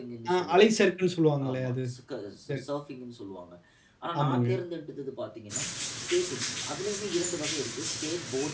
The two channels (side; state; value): both; identical; correlation 1.00